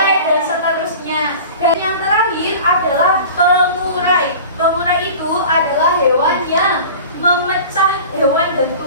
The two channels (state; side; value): inverted; both; correlation -0.38